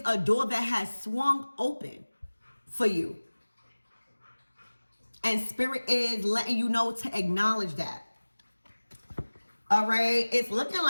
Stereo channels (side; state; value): both; inverted; correlation -1.00